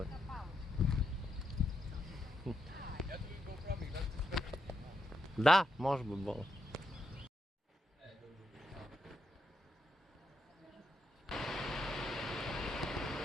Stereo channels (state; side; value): normal; both; correlation 0.82